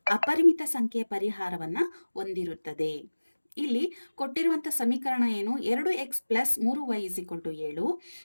ಅಪರಿಮಿತ ಸಂಖ್ಯೆಯ ಪರಿಹಾರವನ್ನು ಹೊಂದಿರುತ್ತದೆ. ಇಲ್ಲಿ ಕೊಟ್ಟಿರುವಂಥ ಸಮೀಕರಣ ಏನು? 2x plus 3y = 7,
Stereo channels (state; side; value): inverted; both; correlation -1.00